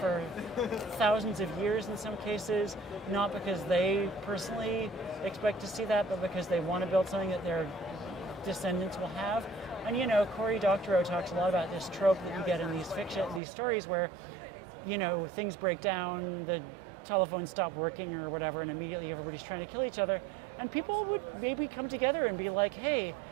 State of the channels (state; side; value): drops out; left; at 13.4 s